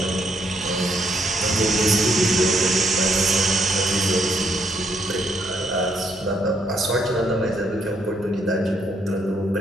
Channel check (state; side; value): normal; both; correlation 0.73